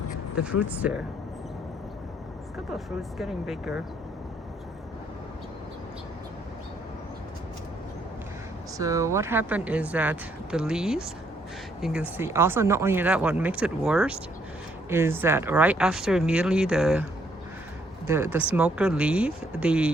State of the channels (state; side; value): normal; both; correlation 0.69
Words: fruits there. A couple of fruits getting bigger. So what happened is that the leaves, you can see, also not only that, what makes it worse is that right after immediately the smoker leave,